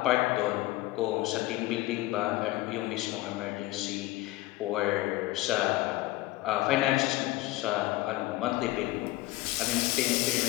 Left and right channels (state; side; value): quieter; right; 18.0 dB